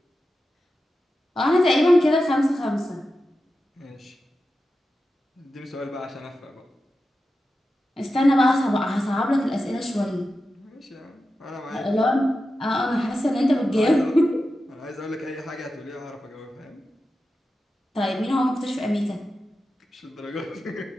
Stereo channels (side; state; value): both; normal; correlation 0.91